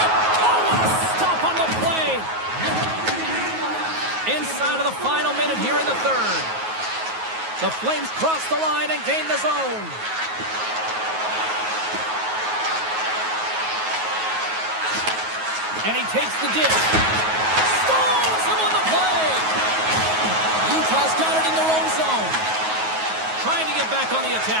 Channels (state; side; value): late; left; 9.4 ms